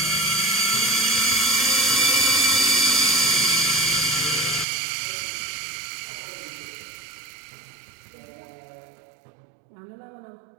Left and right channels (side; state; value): left; drops out; at 4.7 s